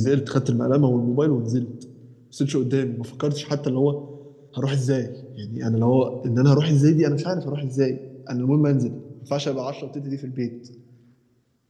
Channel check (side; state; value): both; identical; correlation 1.00